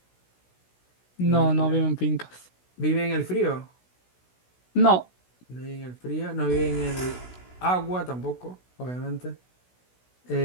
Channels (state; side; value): late; right; 16 ms